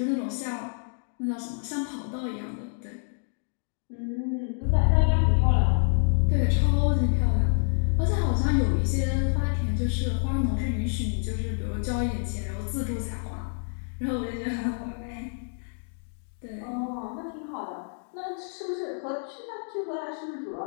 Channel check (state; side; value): silent; right; digital silence